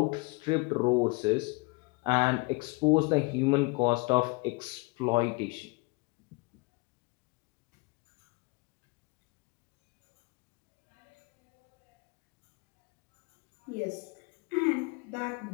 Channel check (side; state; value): right; quieter; 27.2 dB